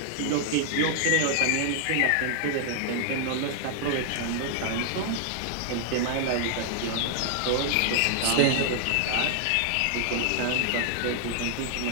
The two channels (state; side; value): different; both; correlation 0.00